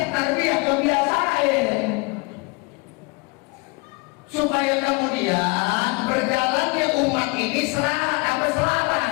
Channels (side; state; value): right; quieter; 28.1 dB